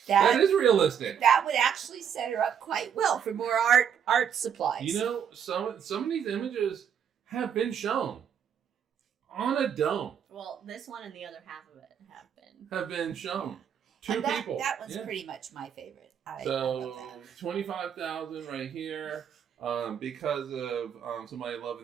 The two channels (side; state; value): left; quieter; 8.1 dB